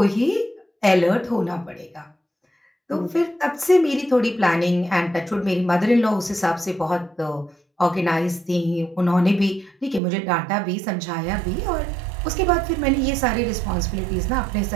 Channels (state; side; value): drops out; left; at 10.0 s